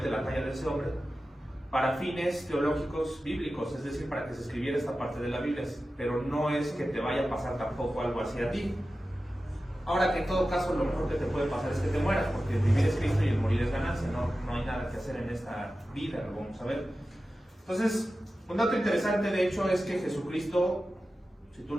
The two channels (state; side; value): normal; both; correlation 0.94